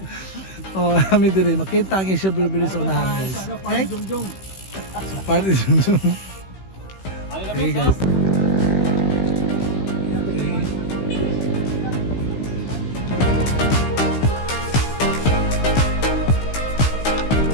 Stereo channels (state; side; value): late; right; 16 ms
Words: Oh, kami dire makita ang Asia Bilbili sa unahan guys. Okay? So, party Jungjung. Okay guys.